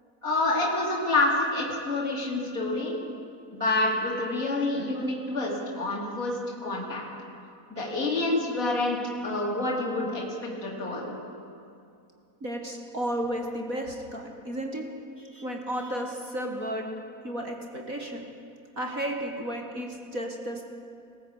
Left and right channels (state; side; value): late; left; 4.1 ms